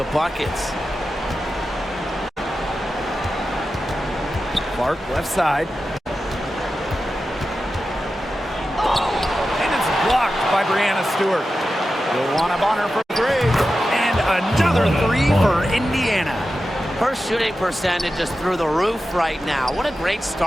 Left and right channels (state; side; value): normal; both; correlation 0.92